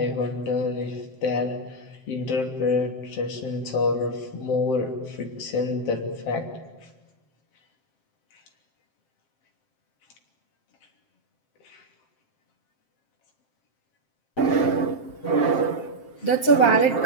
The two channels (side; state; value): right; late; 7.6 ms